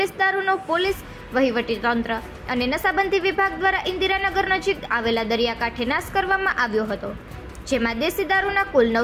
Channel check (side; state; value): both; identical; correlation 1.00